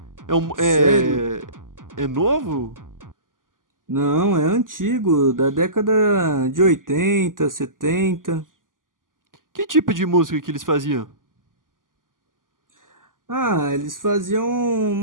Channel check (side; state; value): left; late; 0.89 ms